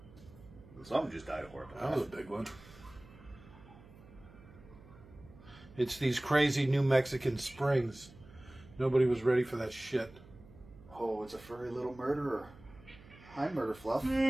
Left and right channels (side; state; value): right; noise; hum, 21 dB below the sound